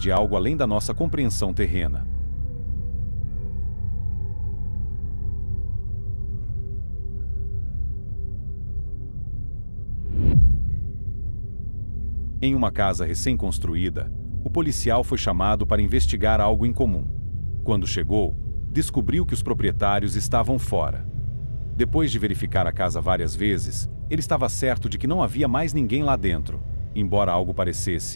algo além da nossa compreensão terrena. Em uma casa recém-construída, o policial foi chamado para investigar algo incomum. Quando chegou, descobriu que os proprietários estavam fora. Depois de verificar a casa várias vezes, ele estava certo de que não havia mais ninguém lá dentro, embora algo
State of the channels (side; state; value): both; inverted; correlation -1.00